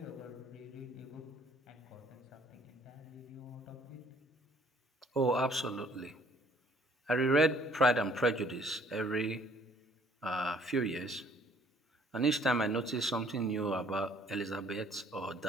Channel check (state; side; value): normal; both; correlation 0.59